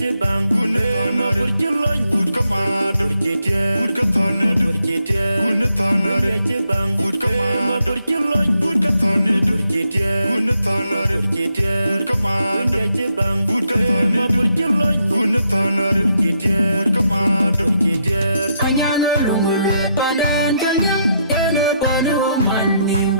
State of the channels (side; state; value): both; inverted; correlation -0.78